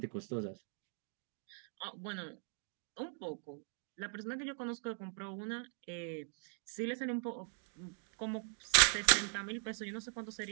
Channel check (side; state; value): left; silent; 51 dB below the other